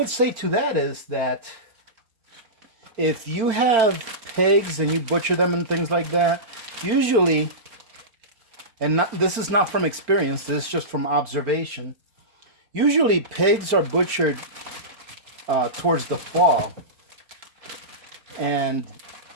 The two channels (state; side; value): late; left; 4.4 ms